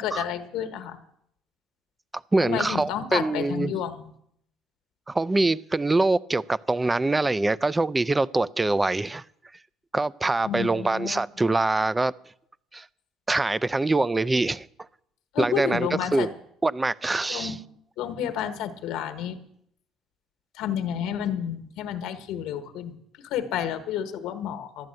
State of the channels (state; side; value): normal; both; correlation 0.85